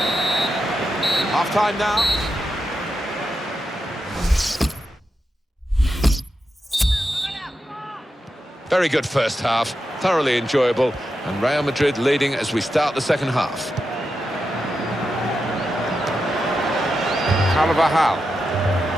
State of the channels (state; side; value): normal; both; correlation 0.88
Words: Half-time now. Very good first half, thoroughly enjoyable, and Real Madrid leading as we start the second half. Carvajal.